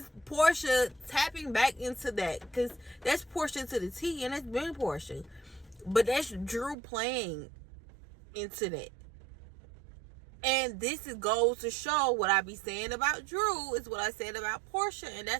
Portia tapping back into that, because that's Portia to the T, and that's been Portia, but that's Drew playing into that. And this goes to show what I be saying about Drew is what I said about Portia, and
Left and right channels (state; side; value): drops out; left; at 6.8 s